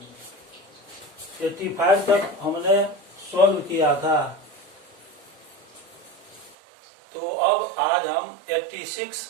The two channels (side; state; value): left; drops out; at 6.6 s